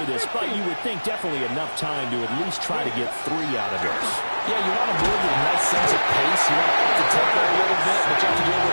this, but you would think definitely enough time to at least try to get 3 out of this. Yeah, you want to build a nice sense of pace. You want to up the tempo a little bit, but you have to do it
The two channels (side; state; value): both; inverted; correlation -1.00